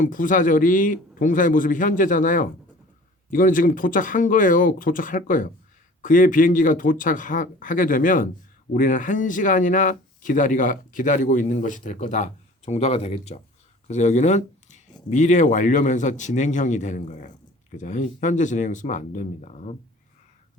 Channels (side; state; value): both; normal; correlation 0.46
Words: 부사절이 동사의 모습이 현재잖아요. 이거는 지금 도착한 거예요. 도착할 거예요. 그의 비행기가 도착하게 되면 우리는 1시간이나 기다리고 있는 것이 될 거다 정도가 되겠죠. 그래서 여기는 미래 완료면서 진행형이 되는 거예요. 그죠? 현재 진행형 쓰면 안 됩니다.